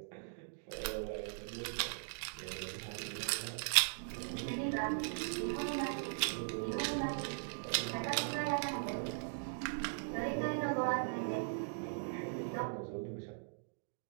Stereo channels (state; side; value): silent; left; digital silence